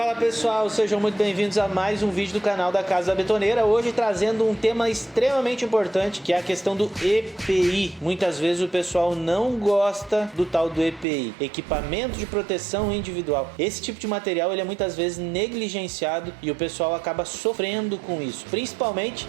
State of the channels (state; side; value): drops out; left; at 11.1 s